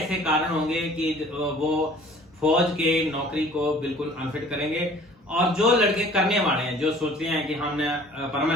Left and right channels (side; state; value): both; normal; correlation 0.50